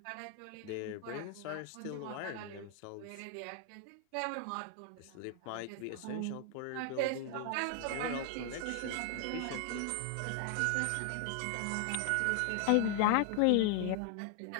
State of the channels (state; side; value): different; both; correlation 0.00